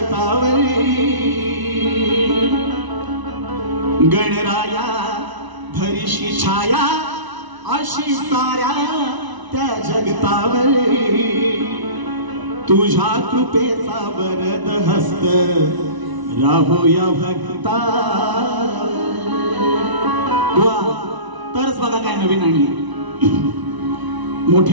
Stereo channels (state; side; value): late; left; 1.0 ms